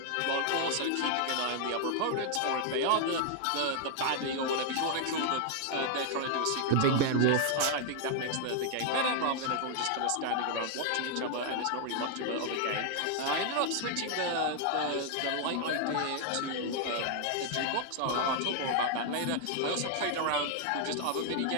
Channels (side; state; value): both; different; correlation 0.00